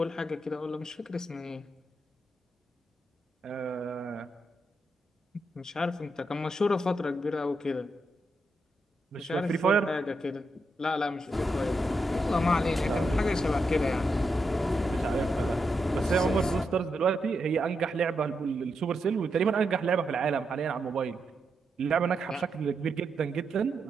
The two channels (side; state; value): both; normal; correlation 0.84